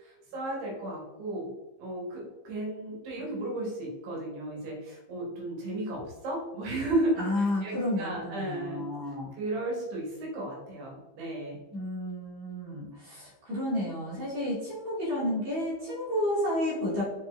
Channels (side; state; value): left; late; 15 ms